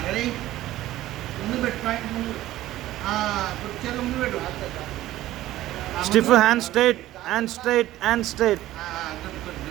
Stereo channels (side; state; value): left; quieter; 15.0 dB